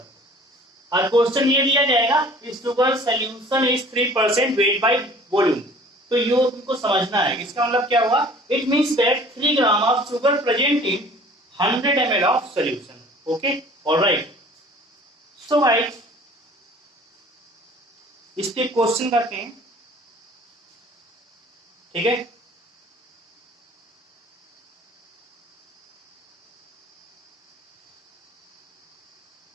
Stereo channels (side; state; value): both; normal; correlation 0.49